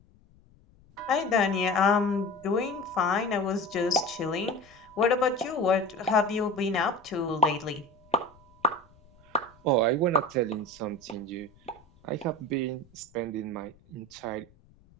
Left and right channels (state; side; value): noise; left; rumble, 29 dB below the sound